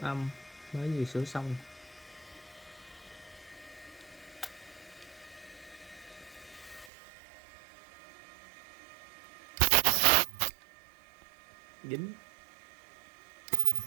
âm mới vừa sửa xong. Dính.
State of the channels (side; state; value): left; drops out; at 6.9 s